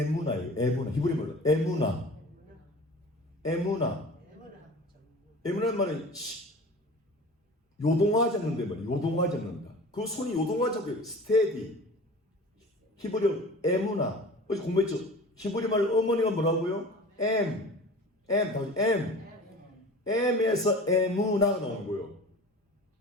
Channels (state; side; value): normal; both; correlation 0.39